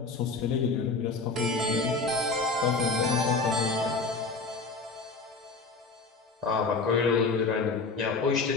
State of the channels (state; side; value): quieter; right; 4.0 dB